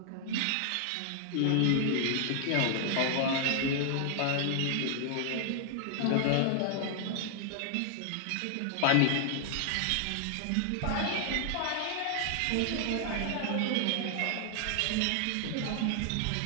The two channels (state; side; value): different; both; correlation 0.00